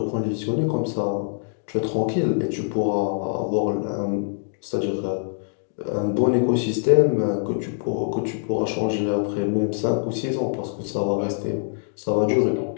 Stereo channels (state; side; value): silent; right; digital silence